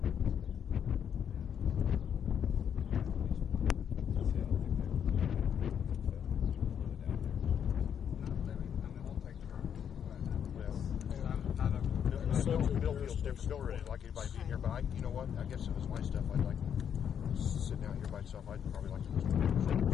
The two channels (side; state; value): right; quieter; 8.4 dB